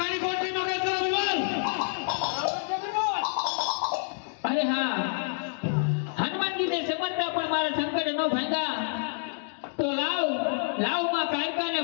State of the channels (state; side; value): silent; right; digital silence